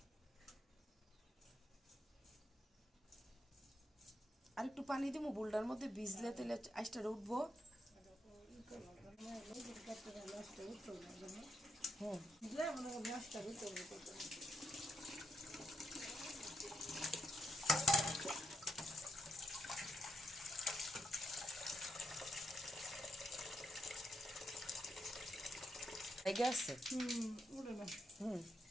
আর একটু পানি দিব বুলটার মধ্যে, ভিজলে তেলে আইসটা উঠবো। হুম, লেগে আছে। হুম,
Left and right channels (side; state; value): both; normal; correlation 0.80